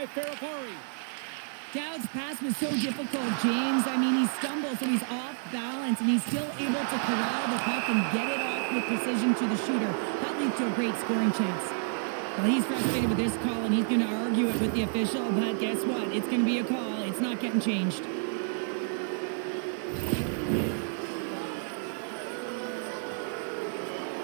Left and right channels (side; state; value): left; silent; 58 dB below the other